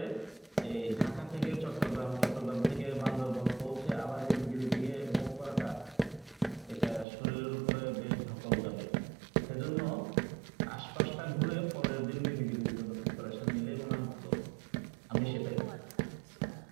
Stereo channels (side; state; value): left; drops out; at 7.1 s